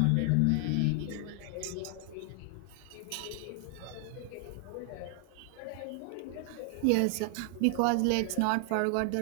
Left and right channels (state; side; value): different; both; correlation 0.00